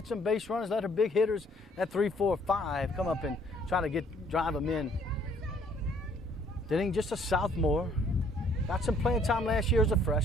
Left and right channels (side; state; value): both; normal; correlation 0.62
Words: some base runners, let her big hitters at 3, 4, 5 come up and try to drive them in. Denning, just a sophomore. Got some playing time last year as a